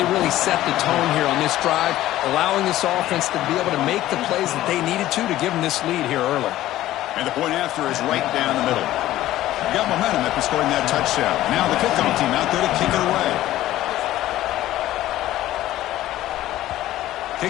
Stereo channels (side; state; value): right; quieter; 14.6 dB